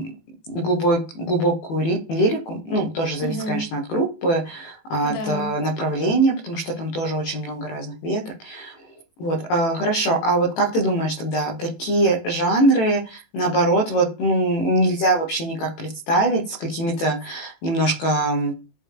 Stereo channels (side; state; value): right; late; 18 ms